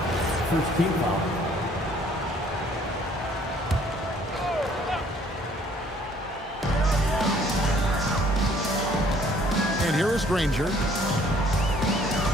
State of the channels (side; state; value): both; normal; correlation 0.59